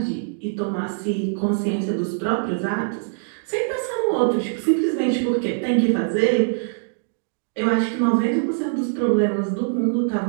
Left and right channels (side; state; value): left; silent; digital silence